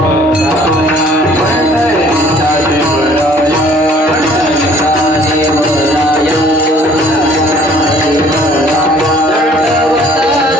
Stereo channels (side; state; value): both; normal; correlation 0.56